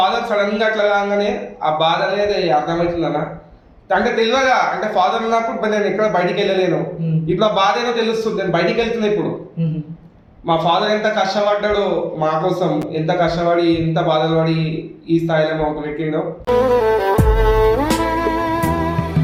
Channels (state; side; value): identical; both; correlation 1.00